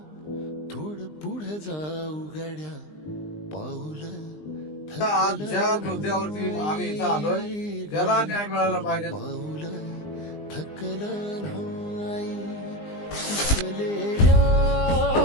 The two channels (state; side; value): late; right; 20 ms